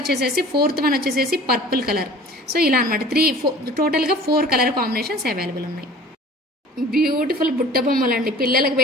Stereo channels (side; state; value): both; normal; correlation 0.45